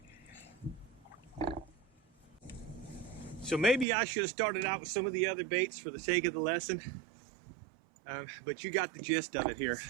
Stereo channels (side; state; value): left; drops out; at 3.9 s